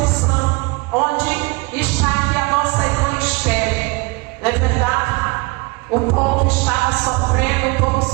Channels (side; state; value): left; quieter; 26.2 dB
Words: onde está aqui a nossa irmã Esther. Não é verdade? O povo estava sofrendo, o povo